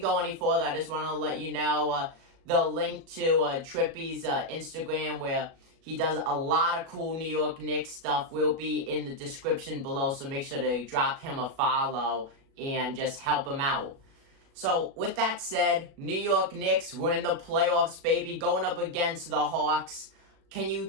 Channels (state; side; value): late; left; 37 ms